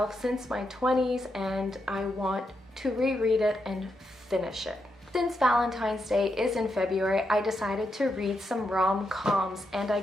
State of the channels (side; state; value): both; normal; correlation 0.83